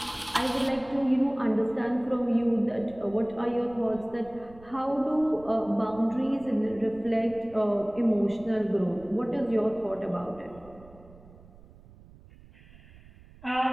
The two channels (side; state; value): right; noise; rumble, 22 dB below the sound